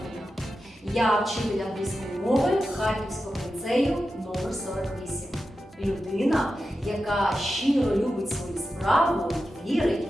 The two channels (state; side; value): normal; both; correlation 0.91